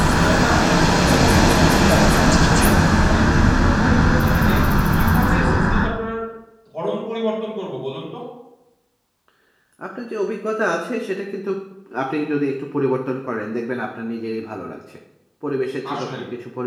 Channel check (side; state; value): both; identical; correlation 1.00